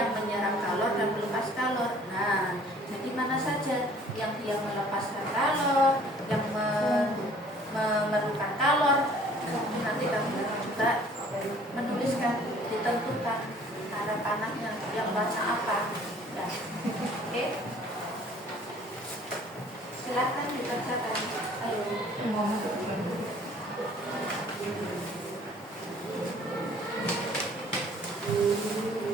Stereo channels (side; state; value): both; normal; correlation 0.54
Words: menyerap kalor dan melepas kalor. Nah, jadi mana saja yang dia melepaskan kalor, yang memerlukan kalor, nanti kamu juga menuliskan, ditentukan cara panahnya yang warna apa. Ya. Oke. Silakan dibacakan. Ayo.